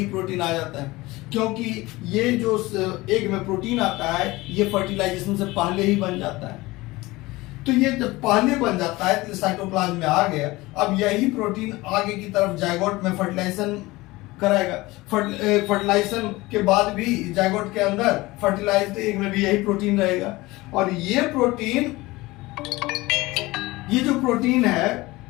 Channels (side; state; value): right; quieter; 20.5 dB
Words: क्योंकि ये जो एग में प्रोटीन आता है ये फर्टिलाइजेशन से पहले ही बन जाता है। तो ये जब पहले बन जाता है तो साइटोप्लाज्म में आ गया। अब यही प्रोटीन आगे की तरफ जायगोट में फर्टिलाइजेशन कराएगा। फर्टिलाइजेशन के बाद भी जायगोट के अंदर फर्टिलाइज्ड एग में भी यही प्रोटीन रहेगा, और ये जो प्रोटीन है